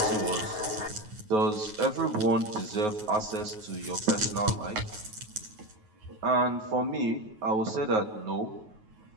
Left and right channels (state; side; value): late; left; 9.4 ms